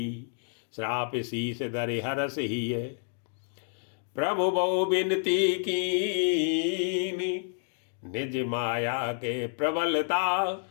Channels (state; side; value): silent; right; digital silence